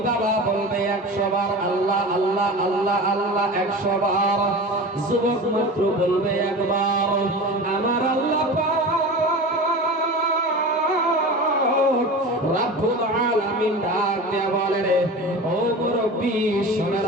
বাবা বলবে 100 বার আল্লাহ আল্লাহ আল্লাহ আল্লাহ 100 বার, যুবক মাত্র বলবে একবার আমার আল্লাহ পাক রব্বুল আলামিন ডাক দেয়া বলে রে ও মুরব্বি শুনে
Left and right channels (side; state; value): both; normal; correlation 0.32